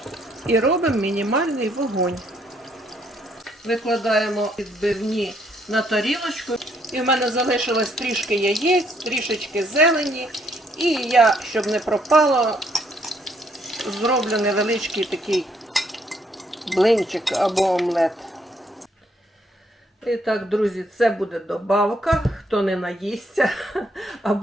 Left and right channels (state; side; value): normal; both; correlation 0.70